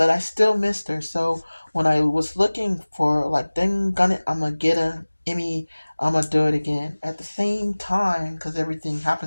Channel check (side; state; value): both; inverted; correlation -1.00